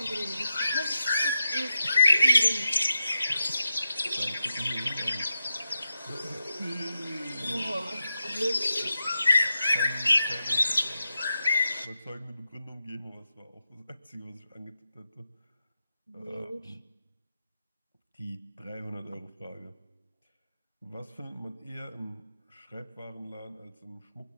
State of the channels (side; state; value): both; inverted; correlation -0.87